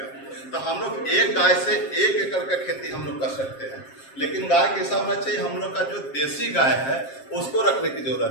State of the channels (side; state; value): right; late; 7.5 ms